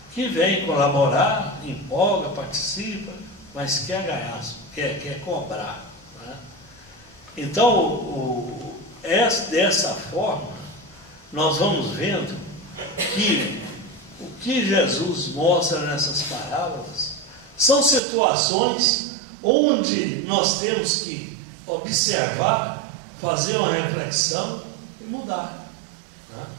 que vêm colaborar, empolga, participa, mas quer ganhar, quer cobrar. Né? Então, dessa forma, nós vamos vendo que o que Jesus mostra nessas parábolas são situações onde nós temos que observar, fazer uma reflexão e mudar. Né?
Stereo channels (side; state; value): left; drops out; at 18.0 s